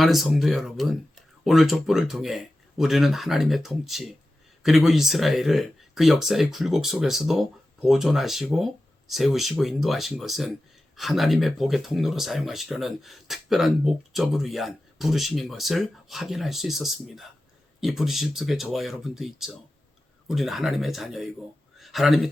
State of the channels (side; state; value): both; normal; correlation 0.94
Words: 성도 여러분, 오늘 족보를 통해 우리는 하나님의 통치, 그리고 이스라엘을 그 역사의 굴곡 속에서도 보존하시고 세우시고 인도하신 것은 하나님의 복의 통로로 사용하시려는 특별한 목적을 위한 부르심인 것을 확인할 수 있었습니다. 이 부르심 속에 저와 여러분도 있죠. 우리는 하나님의 자녀이고 하나님이